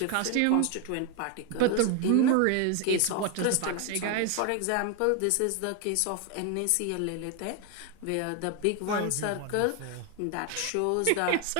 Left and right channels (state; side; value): different; both; correlation 0.01